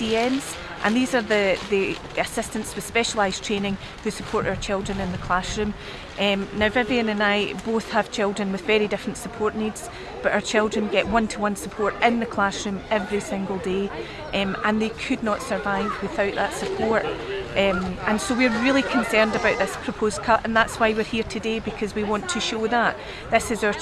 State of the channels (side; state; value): both; identical; correlation 1.00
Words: and these are the assistants with specialised training who support our children in the classroom. Now Vivian and I both have children with very different support needs, but our children get one-to-one support in the classroom every single day, and they could not survive without that support. And so we're really concerned about this proposed cut, and that's why we're here today, because we want to show that this is our